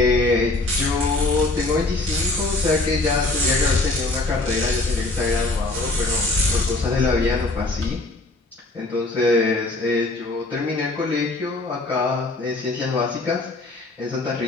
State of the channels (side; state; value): right; quieter; 3.0 dB